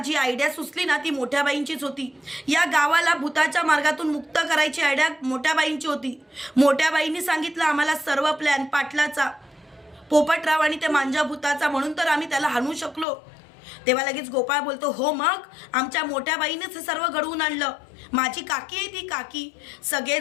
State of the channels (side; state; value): right; drops out; at 13.1 s